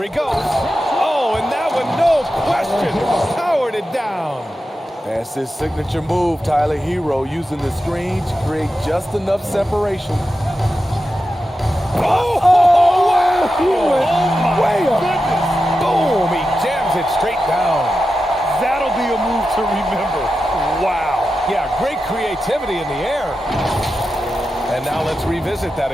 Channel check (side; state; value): both; normal; correlation 0.91